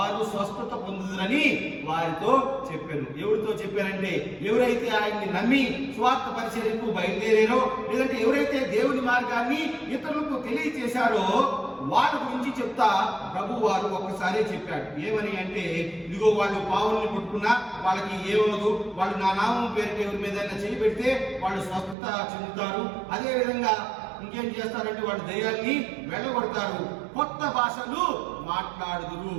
స్వస్థత పొందుదురని వారితో చెప్పారు. ఎవరితో చెప్పారంటే, ఎవరైతే ఆయన్ని నమ్మి స్వార్థ పరిచర్యకు బయలుదేరారో, లేదంటే ఎవరైతే దేవుని మార్గాన్ని ఇతరులకు తెలియచేశారో వాళ్ళ గురించి చెప్తా ప్రభు వారు ఒక్కసారే చెప్పాడు. ఏమని అంటే, ఇదిగో వాళ్ళు పావుల్ని పట్టుకున్నా వాళ్ళకి ఏమవుదు, వాళ్ళు నా నామం పేరుకి ఎవరి మీద చేయి పెడితే వాళ్ళు స్వస్థత చెందుతారు. అదే విధంగా ఇంకేం చేస్తారంటే వాళ్ళు దయ్యాల్ని వెళ్ళగొడతారు, కొత్త భాషలు మాట్లాడుదురు.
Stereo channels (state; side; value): drops out; left; at 22.0 s